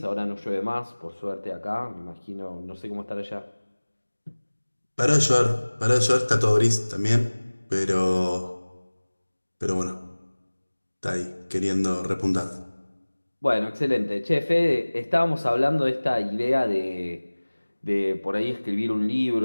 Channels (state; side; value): inverted; both; correlation -1.00